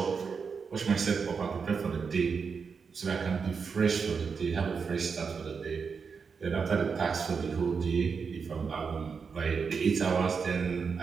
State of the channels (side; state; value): left; quieter; 5.6 dB